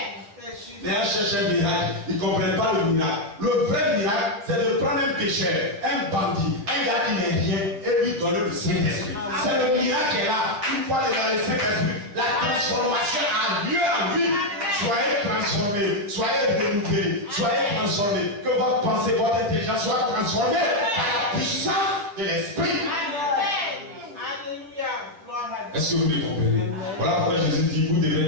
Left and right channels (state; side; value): late; left; 10 ms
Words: Les gens cherchent un miracle, ils ne comprennent pas le miracle. Le vrai miracle, c'est de prendre un pécheur, un bandit, un gars qui n'est rien, et lui donner le Saint-Esprit. C'est le miracle qui est là. Une fois le Saint-Esprit, la transformation a lieu en lui. Soyez transformés, soyez renouvelés, soyez transformés. Que votre pensée, votre intelligence soit transformée par la puissance de l'Esprit. Est-ce que vous me comprenez? Voilà pourquoi Jésus dit, vous